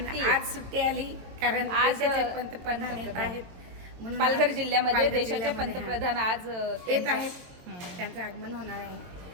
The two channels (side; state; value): left; late; 23 ms